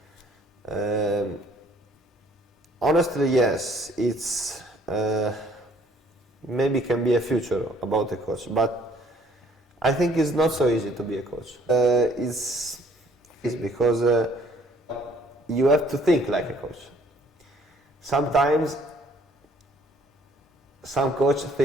Honestly, yes, it's maybe can be a future about a coach, but I think it's not so easy to be a coach. It's because you have to think like a coach. Sometimes some coach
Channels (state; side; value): normal; both; correlation 0.60